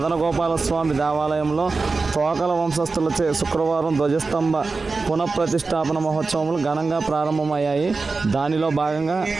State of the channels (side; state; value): left; quieter; 4.1 dB